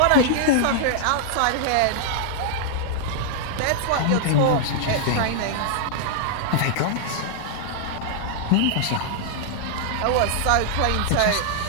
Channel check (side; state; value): both; different; correlation -0.01